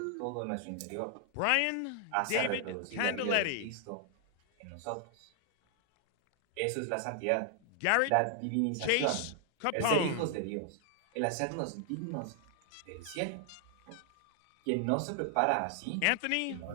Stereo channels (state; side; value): different; both; correlation 0.00